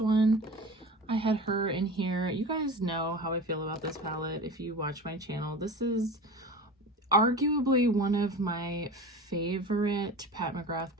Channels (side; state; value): both; normal; correlation 0.34